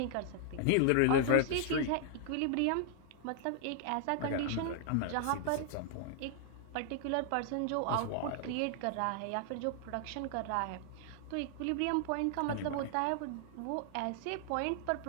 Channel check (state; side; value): different; both; correlation 0.00